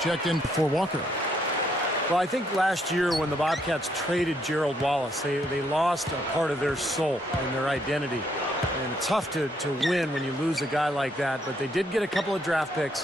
in for Walker. Well, I think last year when the Bobcats traded Gerald Wallace, they lost a part of their soul and their identity. And it's tough to win when you lose a guy like that, but they did get a couple of draft picks,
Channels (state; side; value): normal; both; correlation 0.72